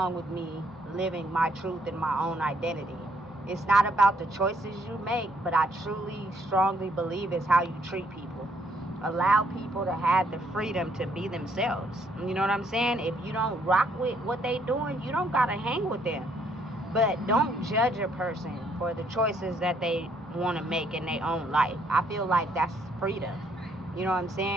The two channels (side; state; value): both; normal; correlation 0.69